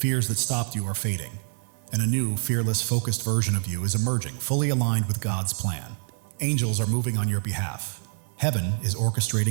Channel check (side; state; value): left; silent; 58 dB below the other